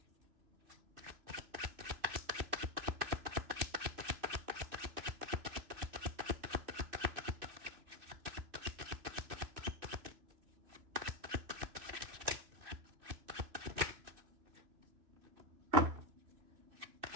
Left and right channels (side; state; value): left; late; 3.0 ms